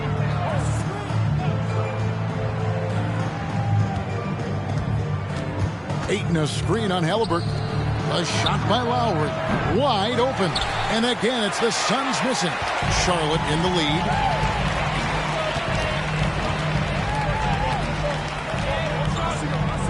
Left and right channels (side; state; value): both; identical; correlation 1.00